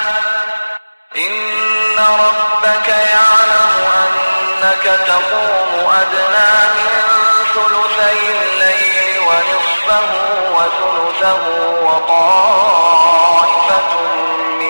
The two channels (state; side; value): inverted; both; correlation -1.00